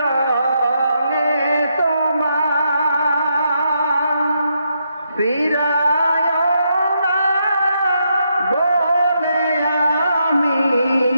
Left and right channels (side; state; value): both; inverted; correlation -0.79